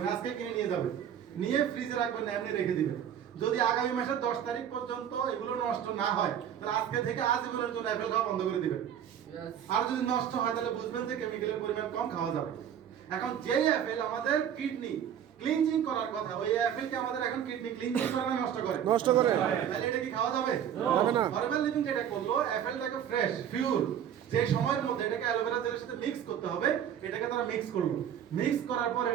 আজকে কিনে নিয়ে যাবেন, নিয়ে ফ্রিজে রাখবেন না, এমনি রেখে দিবেন। যদি আগামী মাসের 10 তারিখ পর্যন্ত এগুলো নষ্ট না হয়, তাহলে আজকে থেকে আজীবনের জন্য অ্যাপেল খাওয়া বন্ধ করে দিবেন। আর যদি নষ্ট হয় তাহলে বুঝবেন যে কেমিক্যালের পরিমাণ কম, খাওয়া যাবে। এখন যে অ্যাপেল আমাদের কিডনি ক্লিনজিং করার কথা, ওই অ্যাপেলকে আমাদের এখন কিডনি ক্লিনজিং করে না নষ্ট করে? নষ্ট করে। তাহলে এটা কি খাওয়া যাবে? যাবে না। ফরমাল লিভিং যেটা করলো, অ্যাপেলটাকে ফ্রেশ পিওর যে সময়ের মধ্যে এটাকে অ্যালোভেরা জেলের সাথে মিক্স করতে হবে, এটাকে তারা মিক্স করলো। মিক্স করার পর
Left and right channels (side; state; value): left; quieter; 9.4 dB